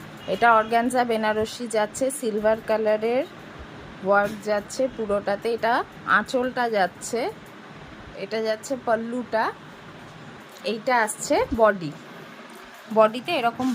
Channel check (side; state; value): both; identical; correlation 1.00